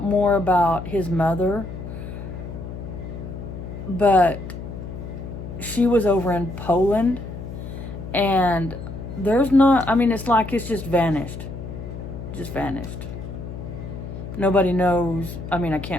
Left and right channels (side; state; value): left; noise; hum, 9 dB below the sound